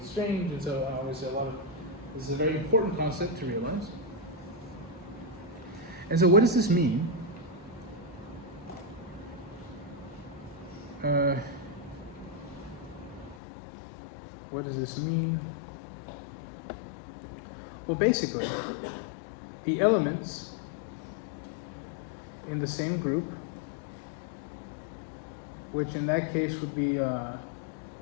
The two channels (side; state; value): right; drops out; at 13.4 s